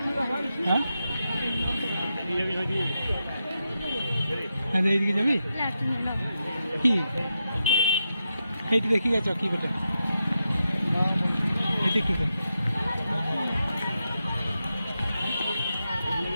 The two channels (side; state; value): both; inverted; correlation -0.87